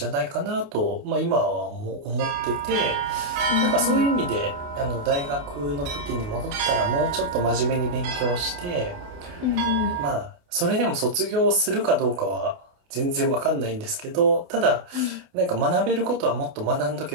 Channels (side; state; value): left; late; 28 ms